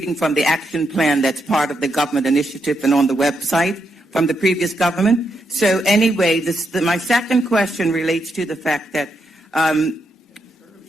from the action plan that's part of the government initiative and on the website from the previous government. So anyway, my second question relates to the fact that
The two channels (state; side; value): normal; both; correlation 0.81